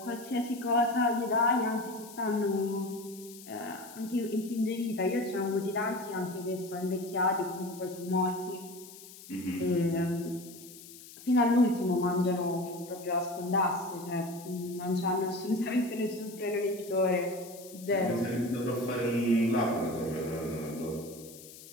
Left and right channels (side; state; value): left; noise; hiss, 17 dB below the sound